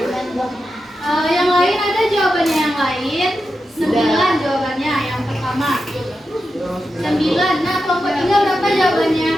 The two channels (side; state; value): both; normal; correlation 0.89